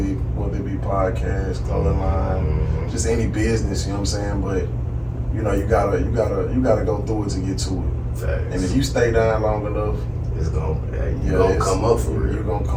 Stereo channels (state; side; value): identical; both; correlation 1.00